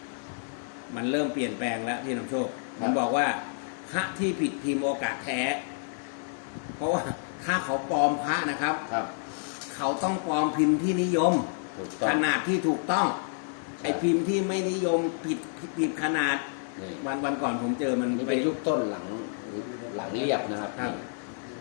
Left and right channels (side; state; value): right; silent; digital silence